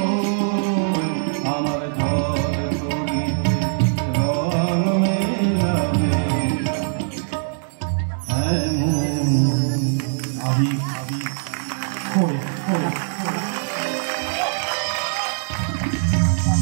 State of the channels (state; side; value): silent; left; 59 dB below the other